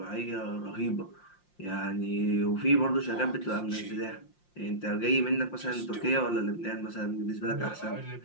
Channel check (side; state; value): right; late; 5.7 ms